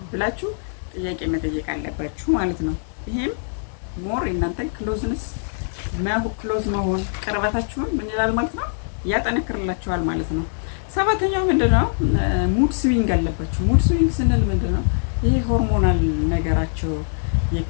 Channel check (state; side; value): silent; right; digital silence